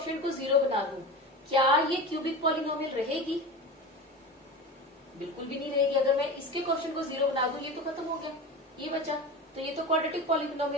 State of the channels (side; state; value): both; normal; correlation 0.28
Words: को 0 बना दूं, क्या ये क्यूबिक पॉलिनोमियल रहेगी, बिल्कुल भी नहीं रहेगी। अगर मैं इसके कोफिशिएंट को 0 बना दूं, ये तो खत्म हो गया, ये बचा, तो ये तो क्वाड्रेटिक